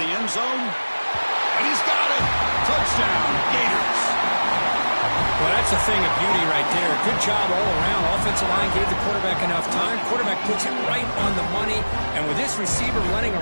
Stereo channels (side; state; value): both; inverted; correlation -1.00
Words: end zone. And he's got it. Touchdown, Gators. Well, that's a thing of beauty right there. Good job all around. Offensive line gave the quarterback enough time. Quarterback puts it right on the money. And with this receiver running a